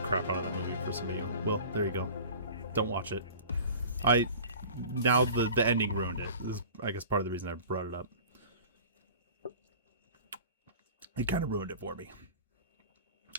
crap out of that movie for some of you. Well, there you go. Don't watch it. Now the ending ruined it. This is, I guess, part of the reason I brought it up. It kind of ruined it for me.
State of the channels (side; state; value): both; inverted; correlation -0.41